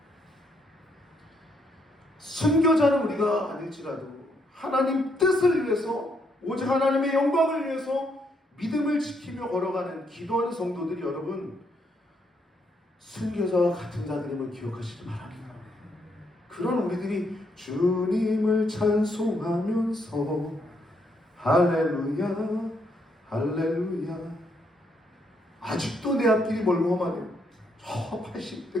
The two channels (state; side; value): normal; both; correlation 0.75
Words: 순교자는 우리가 아닐지라도 하나님 뜻을 위해서 오직 하나님의 영광을 위해서 믿음을 지키며 걸어가는 기도하는 성도들이 여러분 순교자와 같은 자들임을 기억하시기 바랍니다. 그런 우리들이 주님을 찬송하면서 할렐루야 할렐루야, 아직도 내 앞길이 멀고 험하네요. 저